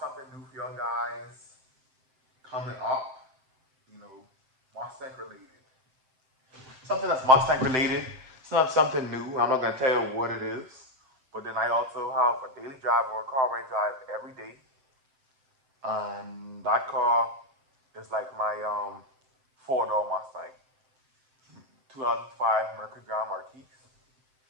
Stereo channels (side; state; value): left; late; 7.7 ms